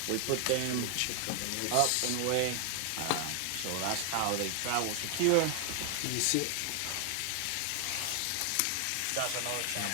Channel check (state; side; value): different; both; correlation 0.00